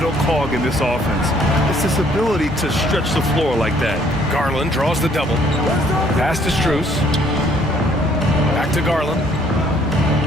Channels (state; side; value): normal; both; correlation 0.63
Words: cog in this offense. It's his ability to stretch the floor like that. Garland draws the double. Pass to Strus. Back to Garland.